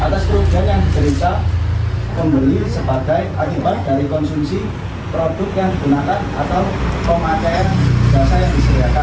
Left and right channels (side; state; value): both; identical; correlation 1.00